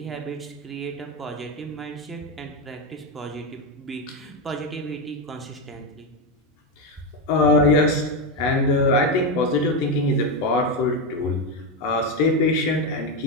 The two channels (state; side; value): normal; both; correlation 0.10